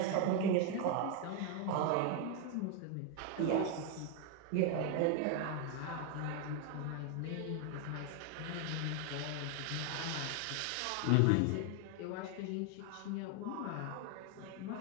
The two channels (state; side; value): different; both; correlation 0.01